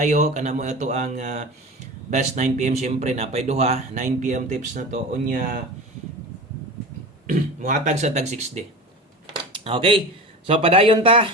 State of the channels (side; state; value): both; normal; correlation 0.30